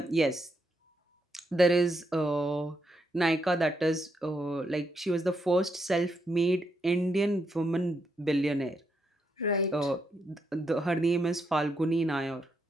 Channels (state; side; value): normal; both; correlation 0.79